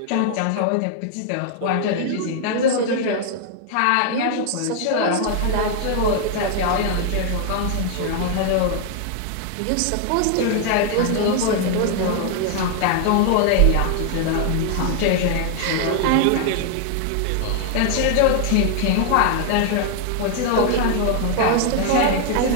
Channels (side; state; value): both; different; correlation 0.00